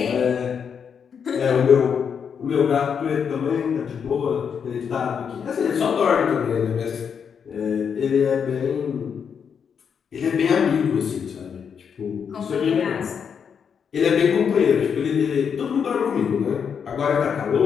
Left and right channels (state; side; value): quieter; right; 7.0 dB